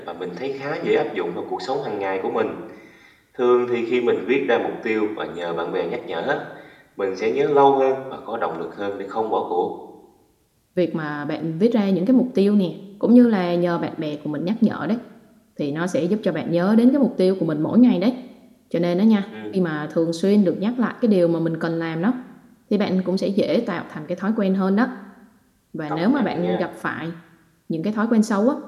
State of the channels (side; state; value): both; identical; correlation 1.00